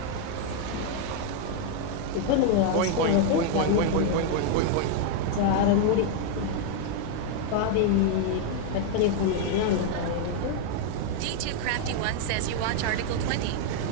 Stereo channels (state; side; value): different; both; correlation 0.00